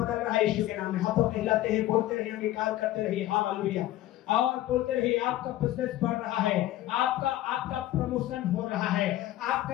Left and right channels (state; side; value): quieter; right; 14.6 dB